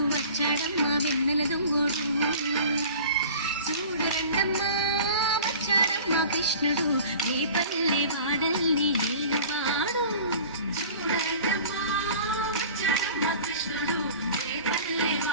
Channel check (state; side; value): inverted; both; correlation -0.42